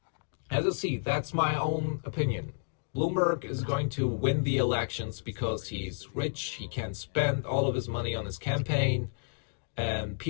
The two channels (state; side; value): silent; right; digital silence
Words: As you see, that's my own opinion. Bloomberg is going to win the elections because he's rich, he can spend all of his money on his campaign, and